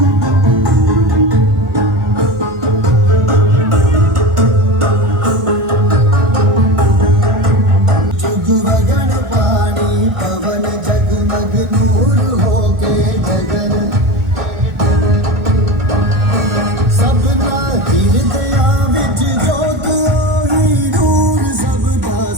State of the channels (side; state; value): left; late; 1.3 ms